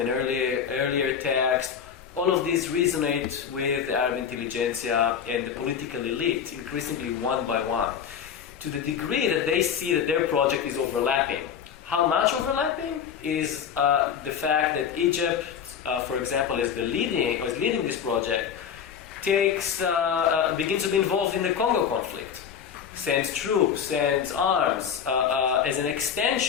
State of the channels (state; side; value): quieter; right; 7.8 dB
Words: an earlier text, all of these resonate with the Arab intelligentsia and the political elite, increasingly one by one, to the degree that they see that their project is overlapping. How much overlapping is the fact that Egypt, for example, is leading this project, begins to be involved in the Congo conflict, sends troops, sends arms, as an